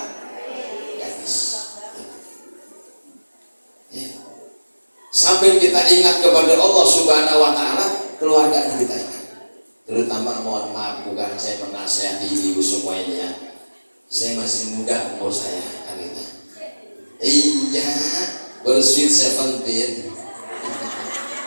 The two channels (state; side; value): inverted; both; correlation -1.00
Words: gadis. Ya. Sampai kita ingat kepada Allah Subhanahu Wa Taala, keluarga kita ingat. Terutama mohon maaf, bukan saya menasihati ibu semua ini ya. Saya masih muda umur saya kan gitu. Iya, bersweet 17.